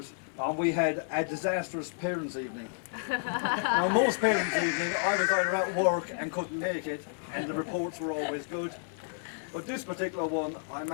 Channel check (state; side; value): silent; right; 57 dB below the other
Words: we had a disastrous parents' evening. Now, most parents' evening, I was either at work and couldn't make it, and the reports were always good. But this particular one, I